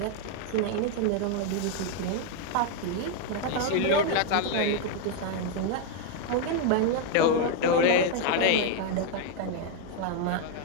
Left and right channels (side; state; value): both; different; correlation 0.00